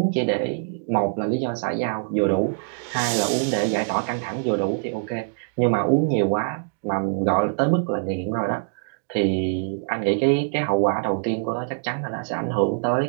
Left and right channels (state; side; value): silent; left; digital silence